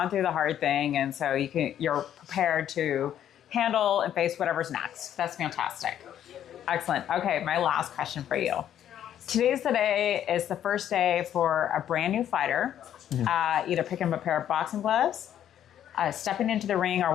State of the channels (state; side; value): quieter; right; 10.5 dB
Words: through the hard thing, and so you're prepared to handle and face whatever's next. That's fantastic. Excellent. Okay, my last question for you. Today's the day. Is the first day for a brand new fighter, either picking up a pair of boxing gloves, stepping into the ring, or